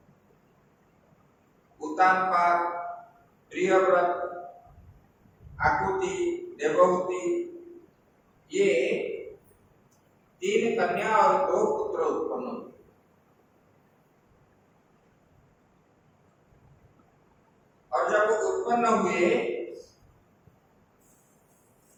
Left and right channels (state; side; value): identical; both; correlation 1.00